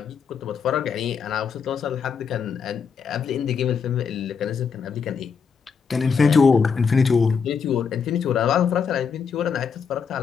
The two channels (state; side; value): quieter; right; 6.1 dB